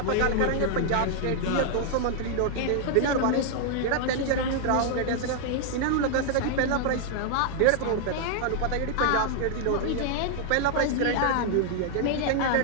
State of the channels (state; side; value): different; both; correlation 0.00